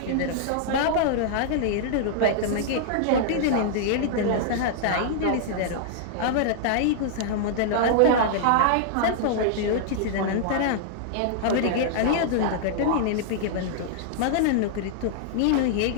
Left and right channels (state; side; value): different; both; correlation -0.01